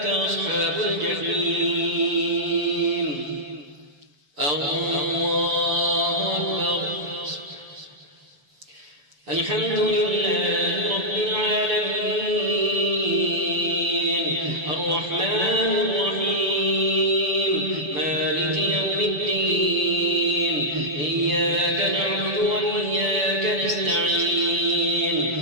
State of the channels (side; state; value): left; late; 7.1 ms